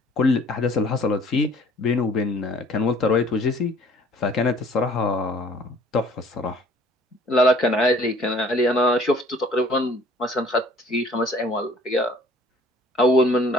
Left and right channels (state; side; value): normal; both; correlation 0.55